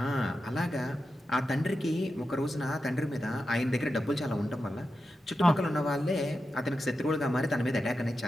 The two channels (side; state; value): both; normal; correlation 0.90